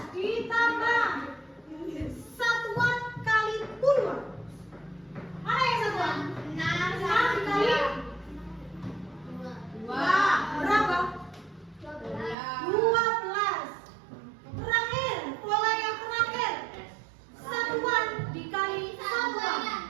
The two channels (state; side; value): drops out; left; at 12.4 s